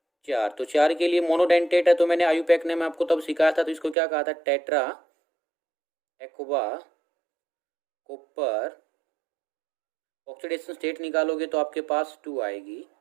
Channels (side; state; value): left; drops out; at 4.0 s